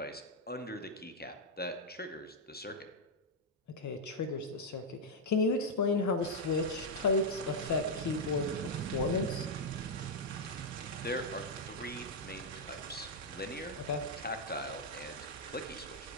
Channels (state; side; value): normal; both; correlation -0.02